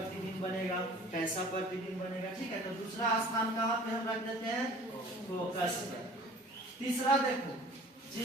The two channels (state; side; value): normal; both; correlation 0.47